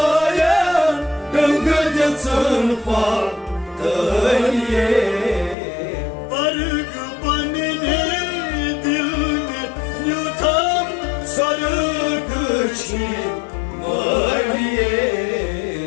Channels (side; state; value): right; drops out; at 5.6 s